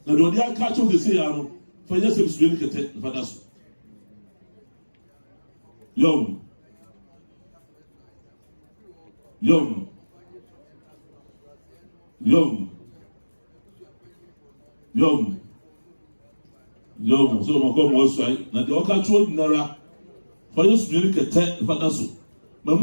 Now, don't you catch on the say, for just a swing at it, for us. Young. Young. Young. Young. Young, so my God was right. Now the Oka told Nara for you to make a tent for Nasu.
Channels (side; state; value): both; inverted; correlation -1.00